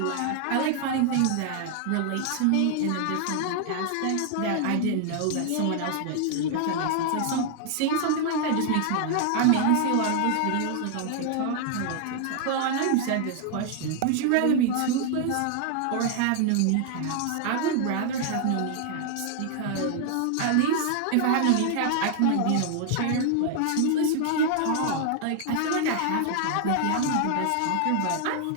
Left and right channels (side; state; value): both; different; correlation 0.00